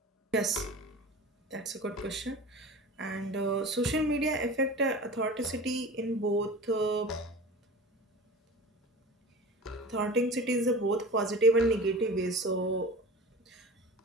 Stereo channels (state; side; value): normal; both; correlation 0.36